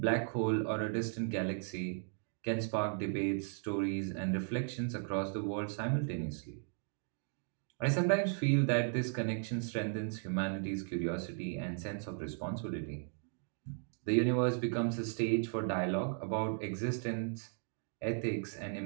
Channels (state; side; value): silent; left; 54 dB below the other